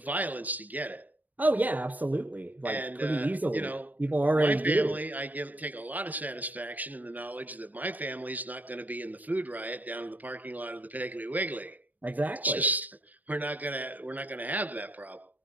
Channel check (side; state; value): left; late; 0.080 ms